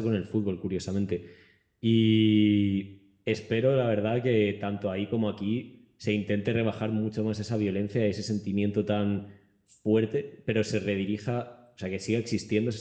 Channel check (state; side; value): identical; both; correlation 1.00